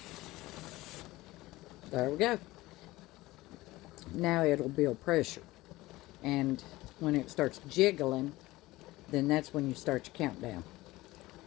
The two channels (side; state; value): right; quieter; 18.9 dB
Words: There we go. Now it'll build pressure, and when it starts jiggling, then that's when you start your countdown.